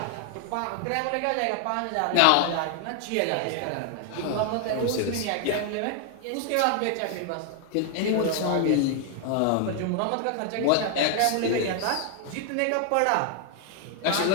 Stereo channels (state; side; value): different; both; correlation 0.00